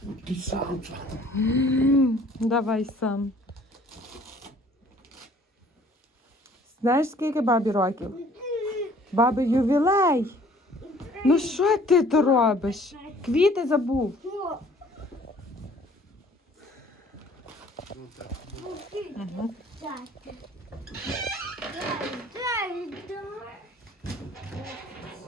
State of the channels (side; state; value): both; normal; correlation 0.55